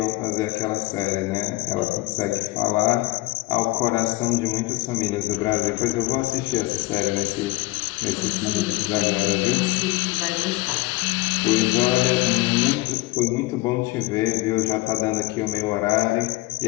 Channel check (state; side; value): quieter; right; 21.6 dB